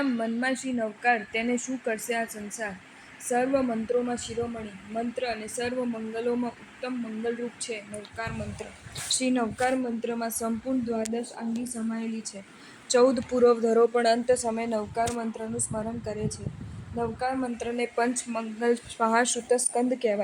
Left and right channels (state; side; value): identical; both; correlation 1.00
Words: મનમાં શ્રી નવકાર, તેને શું કરશે આ સંસાર? સર્વ મંત્રોમાં શિરોમણી મંત્ર અને સર્વ મંગલોમાં ઉત્તમ મંગલરૂપ છે નવકાર મંત્ર. શ્રી નવકાર મંત્રમાં સંપૂર્ણ દ્વાદશ આંગી સમાયેલી છે. 14 પૂર્વ ધરો પણ અંત સમયે નવકાર મંત્રનું સ્મરણ કરે છે. નવકાર મંત્રને પંચ મંગલ મહાશ્રુત સ્કંદ